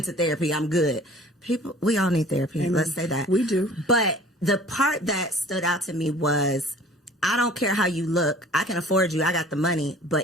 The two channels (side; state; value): both; normal; correlation 0.48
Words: therapy, I'm good. People, we all need therapy. Amen. Let's say that. We do. But the part that stood out to me was, I don't care how you look. I can afford you. I got the money.